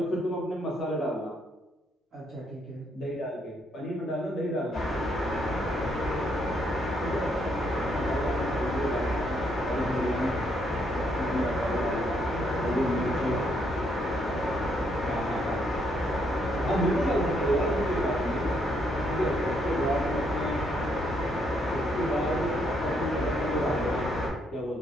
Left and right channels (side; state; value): both; normal; correlation 0.73